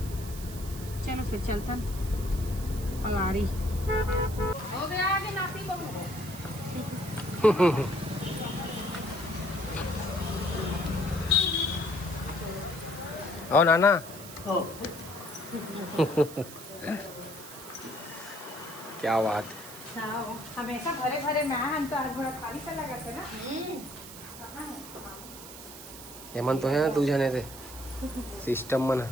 चलो फिर चलता पलारी हो गया आगे नाती बहू ओ नाना क्या बात हमेशा भरे भरे मैं हम तो हर भरा खाली सा लगा थे ना। हेमंत तो है ना तू जाने थे सिस्टम मन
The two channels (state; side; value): noise; right; hiss, 14 dB below the sound